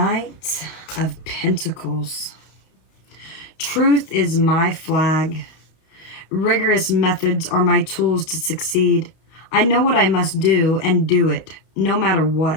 of Pentacles. Truth is my flag. Rigorous methods are my tools to succeed. I know what I must do and do it, no matter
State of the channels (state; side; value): late; right; 31 ms